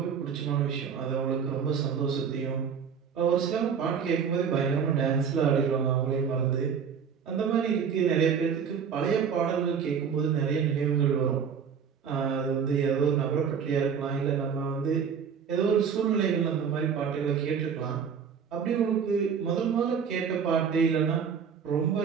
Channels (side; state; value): left; quieter; 6.9 dB